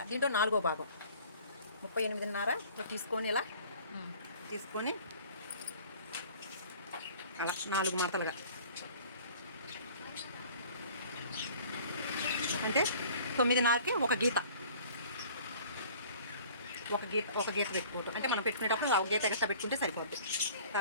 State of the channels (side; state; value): both; inverted; correlation -0.49